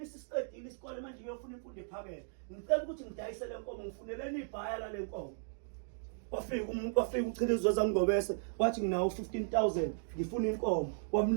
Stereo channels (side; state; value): left; silent; digital silence